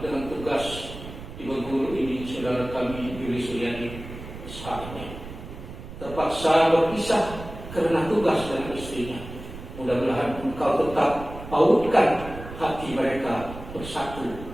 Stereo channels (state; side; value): noise; right; rumble, 12 dB below the sound